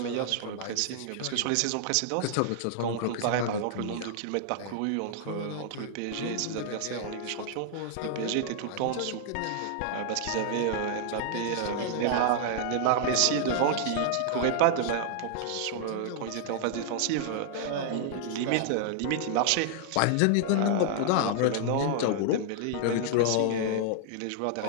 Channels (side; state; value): both; different; correlation -0.01